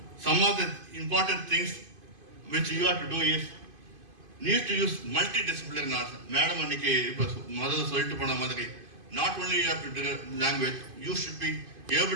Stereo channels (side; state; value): left; late; 2.5 ms